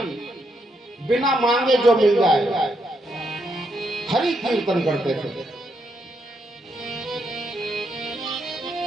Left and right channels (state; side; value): normal; both; correlation 0.78